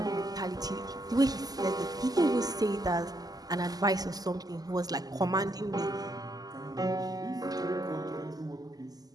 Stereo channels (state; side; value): late; left; 0.18 ms